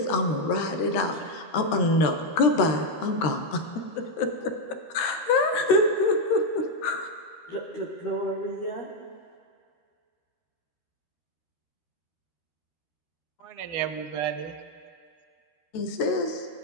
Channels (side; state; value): right; late; 13 ms